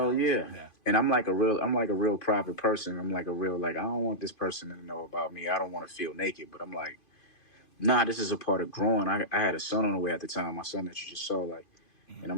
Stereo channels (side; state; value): right; late; 2.5 ms